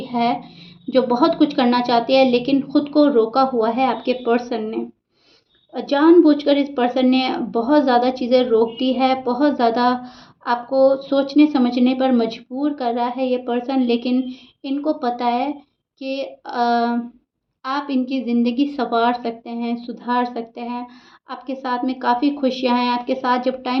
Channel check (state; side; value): identical; both; correlation 1.00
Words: है जो बहुत कुछ करना चाहती है, लेकिन खुद को रोका हुआ है आपके पर्सन ने। जानबूझकर इस पर्सन ने बहुत ज़्यादा चीज़ें रोक दी है, बहुत ज़्यादा आपको सोचने समझने पर मजबूर कर रहा है ये पर्सन, लेकिन इनको पता है कि आप इनकी ज़िंदगी संवार सकते हैं, सुधार सकते हैं। आपके साथ में काफ़ी खुशियाँ हैं, आपके साथ जब